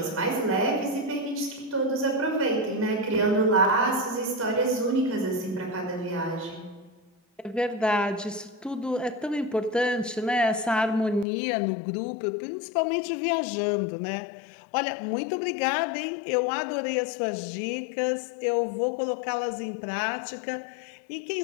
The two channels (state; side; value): drops out; right; at 11.2 s